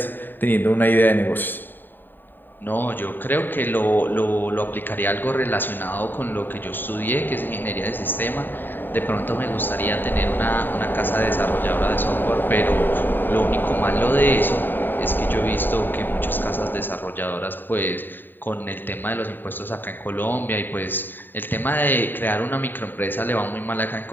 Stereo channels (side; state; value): right; late; 0.092 ms